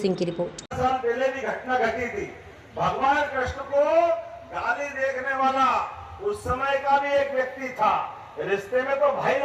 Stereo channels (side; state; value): both; identical; correlation 1.00